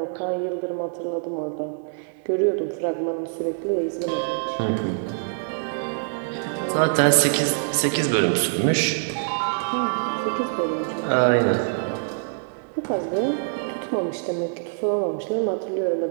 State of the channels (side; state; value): left; silent; digital silence